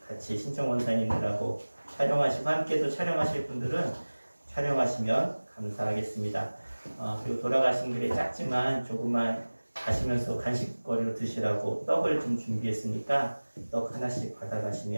같이 신청원사님들하고 촬영하시고 함께 또 촬영하실 분들은 촬영하시면 감사하겠습니다. 그리고 돌아가신 길에 작지만 조금만 가시면서 간식거리로 드시라고 떡을 좀 준비했으니까 떡 하나씩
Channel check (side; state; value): both; inverted; correlation -1.00